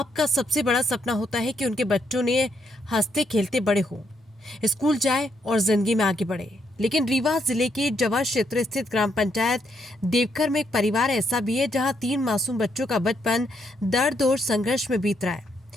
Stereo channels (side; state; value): both; normal; correlation 0.76